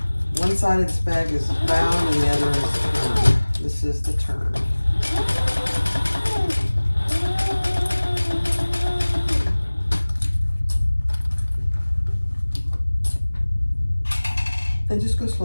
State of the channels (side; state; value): both; inverted; correlation -1.00